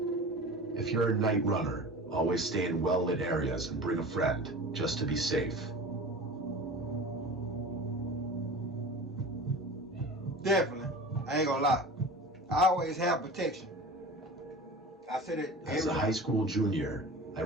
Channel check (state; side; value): normal; both; correlation 0.35